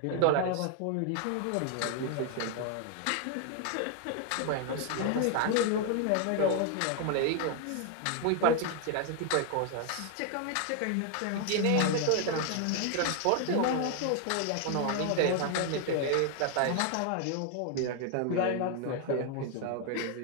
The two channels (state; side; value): different; both; correlation 0.00